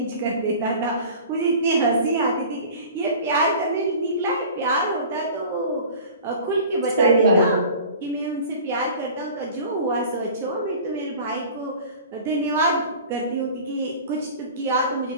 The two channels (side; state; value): both; inverted; correlation -0.41